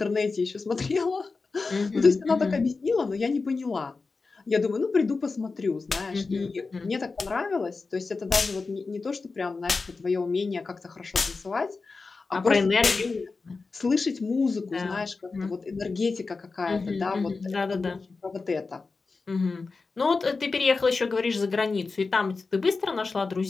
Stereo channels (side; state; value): right; quieter; 4.2 dB